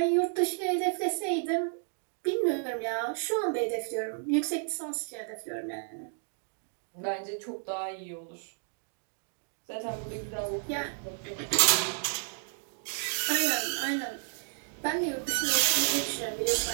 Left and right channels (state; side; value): silent; left; 57 dB below the other